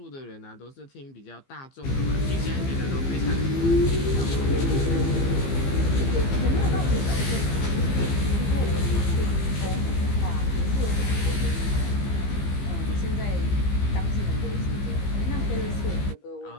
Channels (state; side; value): late; right; 15 ms